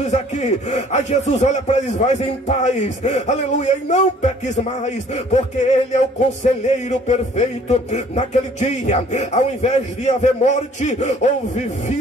aqui. Aí Jesus olha para eles: vai em paz, aleluia, e não peques mais, porque ele é o conselheiro perfeito. Naquele dia, ao invés de haver morte, houve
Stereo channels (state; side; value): normal; both; correlation 0.55